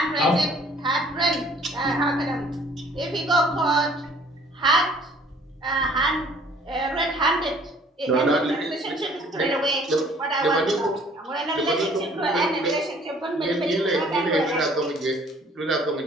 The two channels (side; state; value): both; normal; correlation 0.56